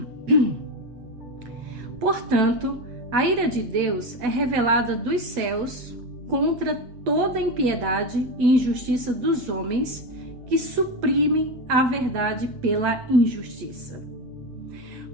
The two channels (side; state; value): left; late; 8.2 ms